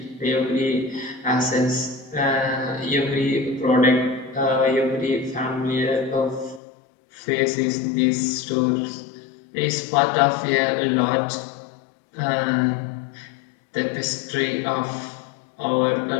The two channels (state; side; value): drops out; right; at 6.6 s